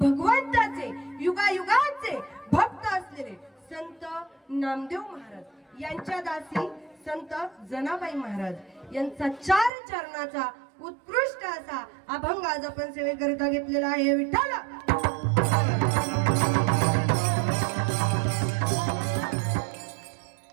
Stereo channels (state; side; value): drops out; left; at 9.7 s